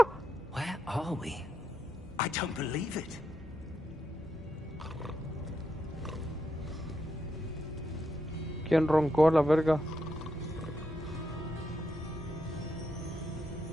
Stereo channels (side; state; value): both; normal; correlation 0.82